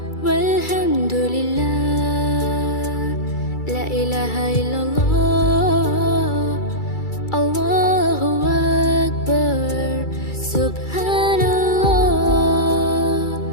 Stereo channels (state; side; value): late; right; 2.3 ms